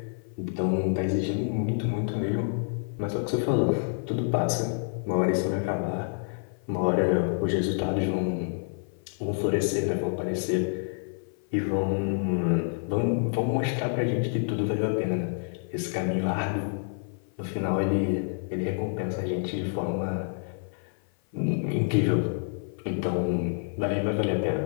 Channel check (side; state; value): right; silent; 55 dB below the other